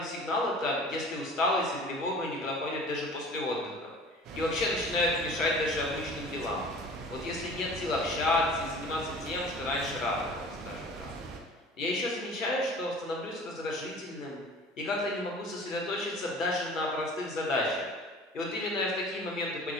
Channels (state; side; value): normal; both; correlation 0.44